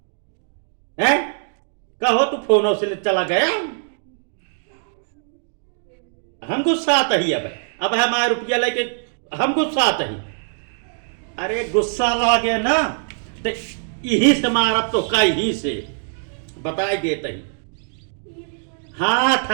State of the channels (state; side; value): silent; left; digital silence